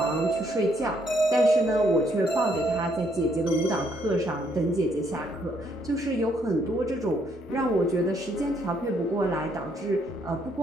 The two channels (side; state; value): both; normal; correlation 0.70